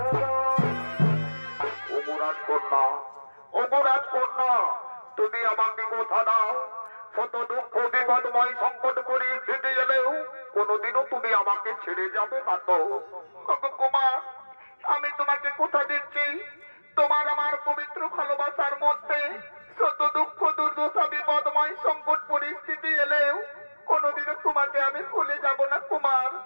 যায়। অপরাধ কন্যা, অপরাধ কন্যা, তুমি আমাকে কথা দাও, শত দুঃখ বিপদময় সংকট পরিস্থিতি এলেও কোনোদিনও তুমি আমাকে ছেড়ে যাবে না তো? কুমার, আমি তোমাকে কথা দিচ্ছি, তোমার আমার পবিত্র ভালোবাসার মধ্যে শত দুঃখ দুর্দশা বিপদময় সংকট পরিস্থিতি এলেও কোনোদিনও তোমাকে আমি ভুলে যাব না কুমার।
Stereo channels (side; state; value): both; inverted; correlation -1.00